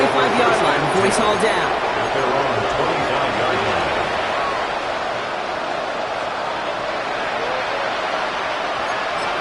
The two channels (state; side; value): identical; both; correlation 1.00